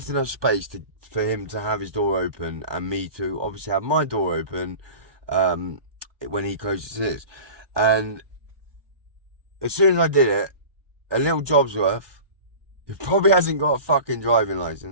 enough space for him to have his door open and me to obviously have my door open when he closes his. And as soon as I did it, a little Jobsworth, who probably hasn't got a fucking driving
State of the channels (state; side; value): late; left; 1.2 ms